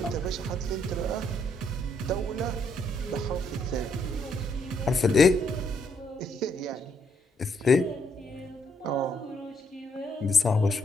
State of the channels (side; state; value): both; normal; correlation 0.73